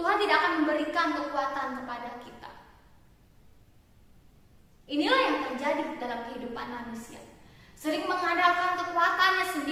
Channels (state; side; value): identical; both; correlation 1.00